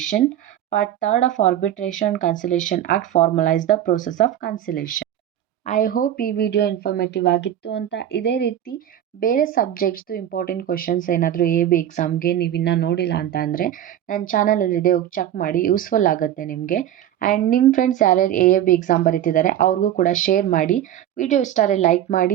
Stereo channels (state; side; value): quieter; left; 11.3 dB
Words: Part 3rd of arbitration and conciliation act formalise the process of conciliation. I hope ಈ video informative ಆಗಿತ್ತು ಅಂತ. ಇದೇ ರೀತಿ ಬೇರೆ ಸಬ್ಜೆಕ್ಟ್ಸ್ದು important questions ಏನಾದರೂ AB ಎಕ್ಸಾಮ್ಗೆ ನೀವು ಇನ್ನೂ ನೋಡಿಲ್ಲ ಅಂತ ಅಂದರೆ ನನ್ನ ಚಾನಲಲ್ಲಿದೆ, ಹೋಗಿ ಚೆಕ್ ಮಾಡಿ, ಯೂಸ್ಫುಲ್ ಆಗುತ್ತೆ ನಿಮಗೆ. ಆ್ಯಂಡ್ ನಿಮ್ಮ ಫ್ರೆಂಡ್ಸ್ ಯಾರ್ಯಾರು AB ಎಕ್ಸಾಮ್ ಬರೀತಿದ್ದಾರೆ ಅವ್ರಿಗೂ ಕೂಡ ಶೇರ್ ಮಾಡಿ. ವಿಡಿಯೋ ಇಷ್ಟ ಆದರೆ ಲೈಕ್